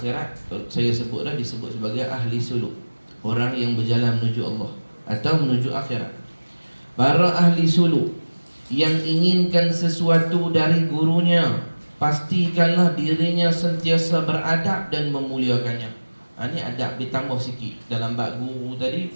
saya sebutlah disebut sebagai ahli suluk, orang yang berjalan menuju Allah atau menuju akhirat. Para ahli suluk yang inginkan sesuatu dari gurunya, pastikanlah dirinya sentiasa beradab dan memuliakannya. Ini adab ditambah sikit. Dalam bab guru tadi,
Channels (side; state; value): both; inverted; correlation -1.00